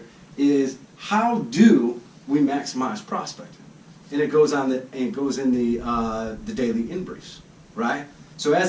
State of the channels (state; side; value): identical; both; correlation 1.00